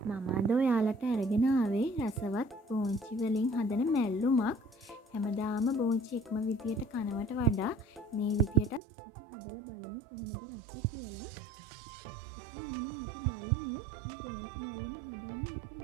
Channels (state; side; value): drops out; left; at 8.8 s